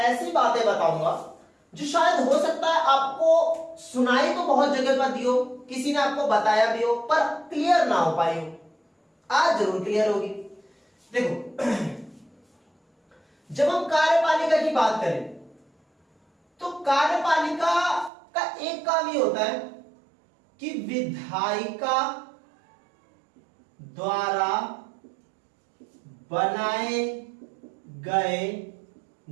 बातें बताऊंगा जो शायद हो सकता है आपको सुनाई तो बहुत जगह पर दी हो, किसी ने आपको बताया भी हो, पर क्लियर ना हो पाई हो। आज जरूर क्लियर होगी। देखो, जब हम कार्यपालिका की बात करें तो कार्यपालिका का एक काम ये होता है कि विधायिका द्वारा बनाए गए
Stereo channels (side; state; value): left; drops out; at 18.1 s